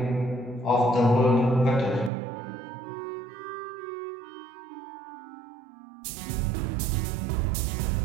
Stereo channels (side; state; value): left; drops out; at 2.1 s